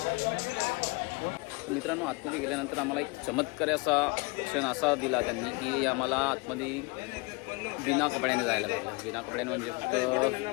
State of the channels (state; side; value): quieter; right; 27.8 dB